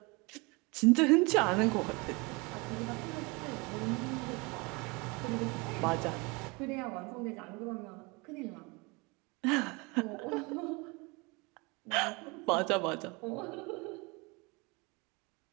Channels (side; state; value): left; quieter; 27.5 dB